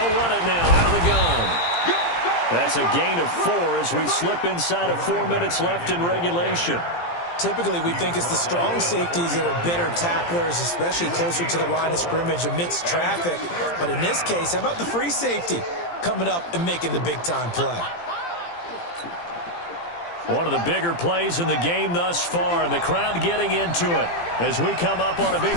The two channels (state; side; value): late; right; 17 ms